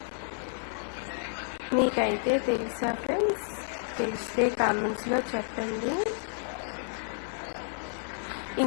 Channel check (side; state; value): right; silent; 57 dB below the other